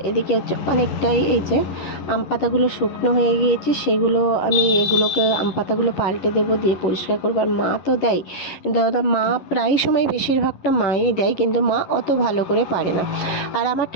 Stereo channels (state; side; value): late; right; 11 ms